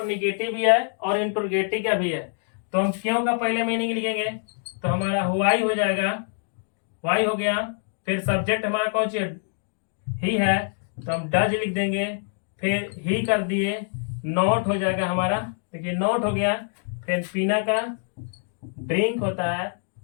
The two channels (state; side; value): silent; right; 59 dB below the other